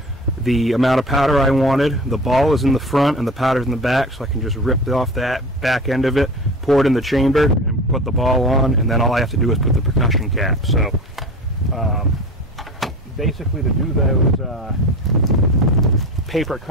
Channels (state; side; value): normal; both; correlation 0.34